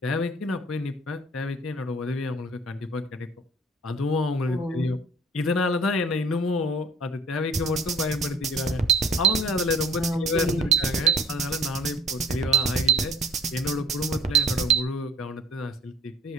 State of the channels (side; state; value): both; normal; correlation 0.48